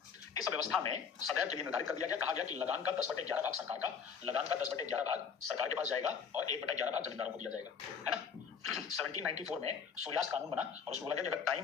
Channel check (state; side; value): quieter; right; 6.5 dB